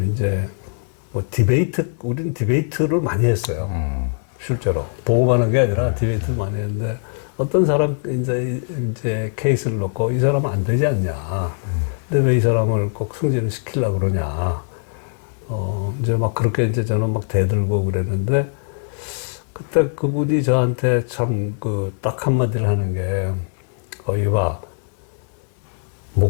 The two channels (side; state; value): right; silent; digital silence